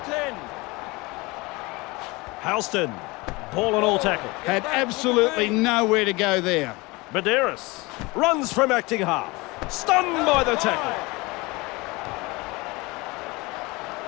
to 10. Halston, ball and all tackle. Had absolutely nowhere to go there. Medeiros runs from acting half. Stunned by the tackle.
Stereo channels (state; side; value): quieter; right; 23.9 dB